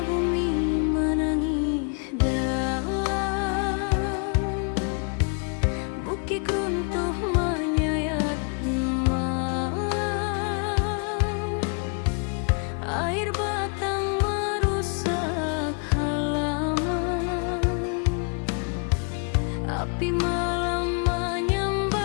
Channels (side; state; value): right; quieter; 38.0 dB